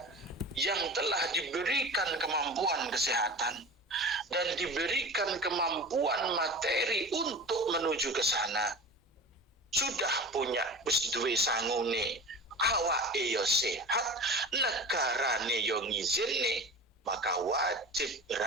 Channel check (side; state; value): both; normal; correlation 0.33